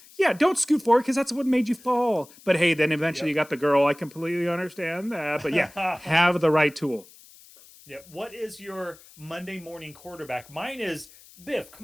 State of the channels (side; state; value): left; noise; hiss, 23 dB below the sound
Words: Yeah, don't scoot forward because that's what made you fall. But hey, then eventually you got the girl. I completely understand that. But yeah, have the right tool. Yeah. What is your Monday morning quarterback? Mine is Biff.